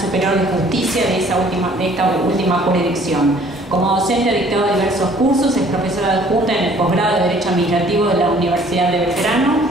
de Justicia de esta última jurisdicción. Como docente ha dictado diversos cursos, es profesora adjunta en el posgrado de Derecho Administrativo de la Universidad de Belgrano,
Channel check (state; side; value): normal; both; correlation 0.56